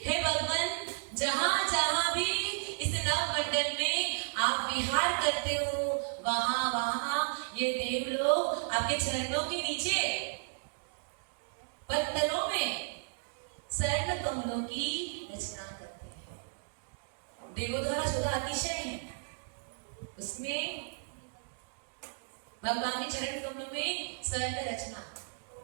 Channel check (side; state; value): left; silent; digital silence